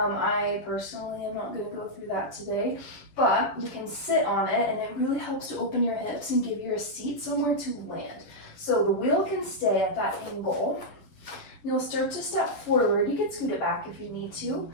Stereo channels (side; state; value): right; late; 11 ms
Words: personally am not going to go through that today, but you can sit on it, and it really helps to open your hips and give you a seat somewhere to land. So the wheel can stay at that angle. You'll start to step forward. You can scoot it back if you need to,